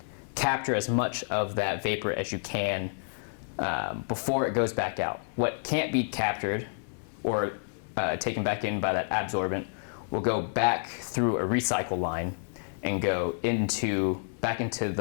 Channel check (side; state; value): right; silent; 58 dB below the other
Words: capture as much of that vapor as you can before it goes back out. What can't be captured or taken back in by that absorbent will go back through a recycle line and go back into